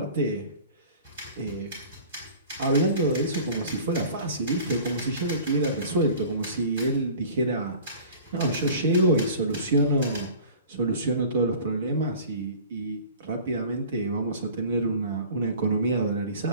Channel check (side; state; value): both; inverted; correlation -0.44